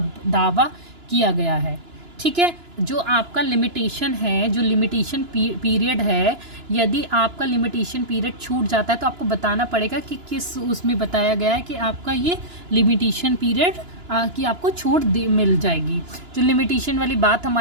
दावा किया गया है। ठीक है, जो आपका लिमिटेशन है, जो लिमिटेशन पीरियड है, यदि आपका लिमिटेशन पीरियड छूट जाता है तो आपको बताना पड़ेगा कि किस उसमें बताया गया है कि आपका ये लिमिटेशन पीरियड कि आपको छूट मिल जाएगी। जो लिमिटेशन वाली बात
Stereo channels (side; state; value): left; late; 2.9 ms